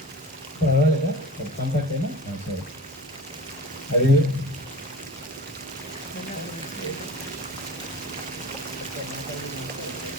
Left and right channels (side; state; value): both; normal; correlation 0.38